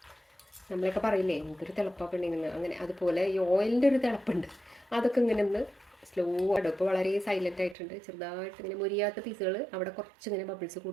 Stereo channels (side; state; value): left; drops out; at 7.8 s